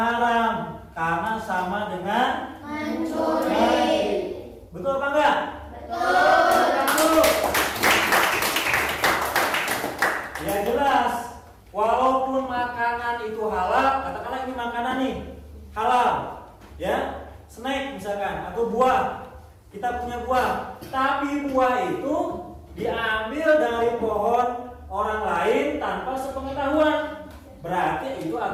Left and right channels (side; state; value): both; identical; correlation 1.00